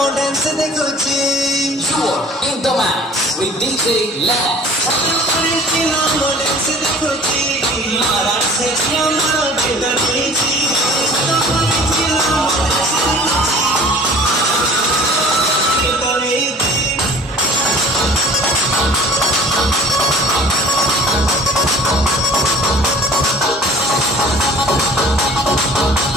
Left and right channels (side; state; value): both; normal; correlation 0.48